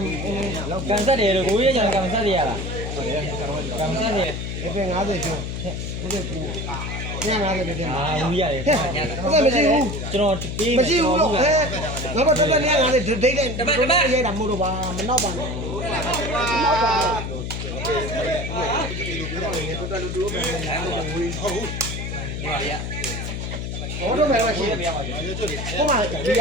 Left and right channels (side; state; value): left; noise; hum, 5 dB below the sound